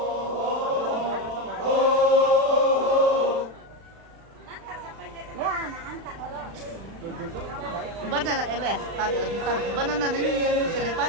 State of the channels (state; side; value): late; left; 35 ms